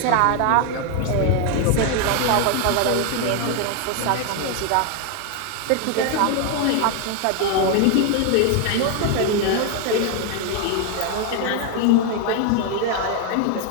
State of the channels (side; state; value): both; different; correlation 0.01